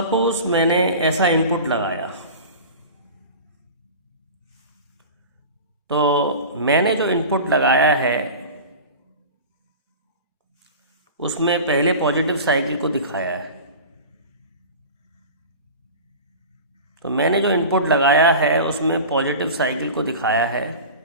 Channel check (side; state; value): both; inverted; correlation -0.34